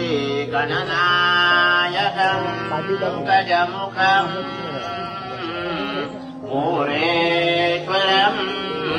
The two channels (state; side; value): identical; both; correlation 1.00